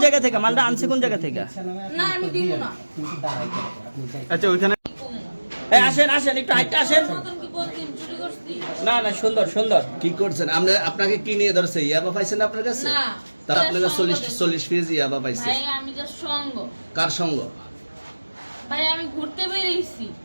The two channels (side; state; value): both; inverted; correlation -1.00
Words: থেকে? মালটা আনছে কোন জায়গা থেকে? না আমি দিব না। আচ্ছা, ওইখানে কি কমু? এই আসেন একটু হাইটা আসেন। নতুন কি বলছেন, চুরি করছি? না না, সুন্দর সুন্দর। কি করছেন? আপনাকে কি নিয়ে ধরছে? ইয়াবা পাইছেন আপনার কাছে? না। তাহলে আপনারা 40 পিস ইয়াবা পাইছে। ভাই আমি জাস্ট সঙ্গ। কার সঙ্গ? ভাই আমি ঘুরতে বেরিয়েছি।